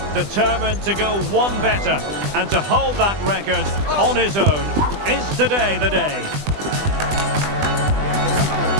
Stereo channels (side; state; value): left; late; 20 ms